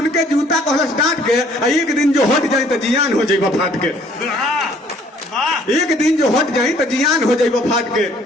के जूता कहलस डांट के एक दिन जो हट जाए तो जियान हो जाए फाट के। एक दिन जो हट जाए तो जियान हो जाए फाट के।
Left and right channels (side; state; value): both; normal; correlation 0.59